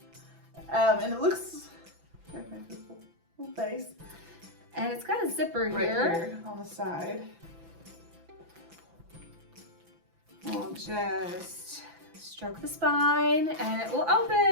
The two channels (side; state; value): left; late; 5.9 ms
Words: And it looks. Little face. And it's got a zipper Right here on the side. We'll just stroke the spine and it will